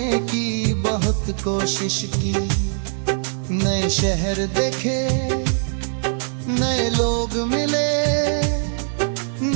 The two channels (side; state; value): left; silent; 56 dB below the other